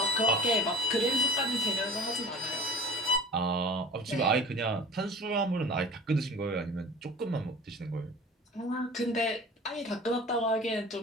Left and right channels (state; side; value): normal; both; correlation 0.40